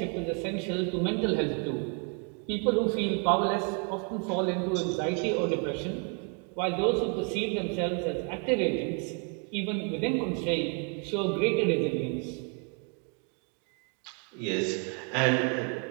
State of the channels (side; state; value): left; quieter; 35.5 dB